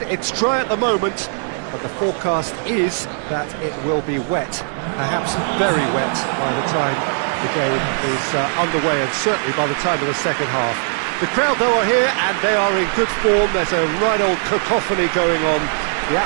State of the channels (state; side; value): silent; left; 58 dB below the other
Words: It's dry at the moment, but the forecast is that it will be wet, perhaps very wet by the time the game is underway, and certainly by the time of the second half. The crowd, though, are here, and they are in good form. There's a right old cacophony going on. The